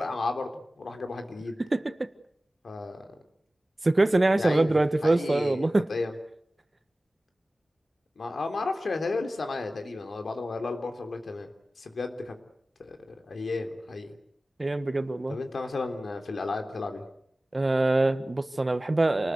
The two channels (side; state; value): both; normal; correlation 0.96